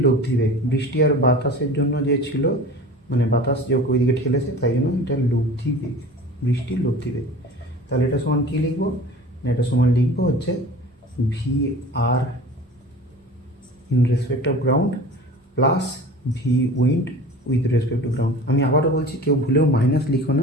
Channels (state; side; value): normal; both; correlation 0.39